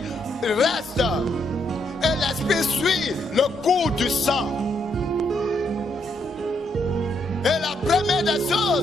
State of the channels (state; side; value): normal; both; correlation 0.75